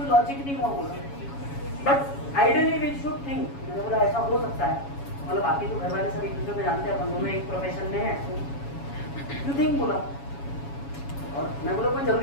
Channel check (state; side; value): late; right; 7.2 ms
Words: लॉजिक नहीं हुआ बोला, but ideally we should think. मैंने बोला ऐसा हो सकता है, मतलब बाकी तो घर वाले सब एक दूसरे को जानते हैं, अपन दोनों एक प्रोफेशन में है, यू थिंक बोला। और मैं बोला कोई